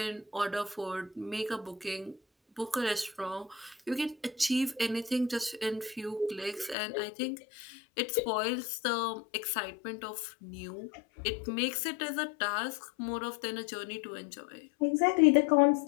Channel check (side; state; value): right; drops out; at 6.8 s